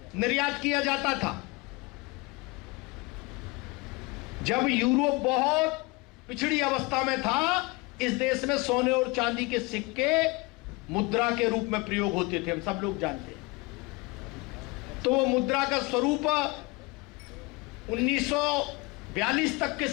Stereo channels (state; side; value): quieter; right; 25.1 dB